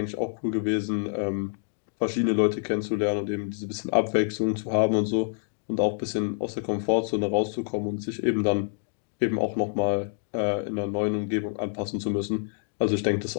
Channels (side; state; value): right; silent; digital silence